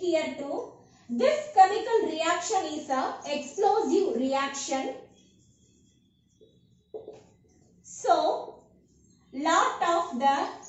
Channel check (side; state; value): both; identical; correlation 1.00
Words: too. This chemical reaction is a explosive reaction. So, lot of the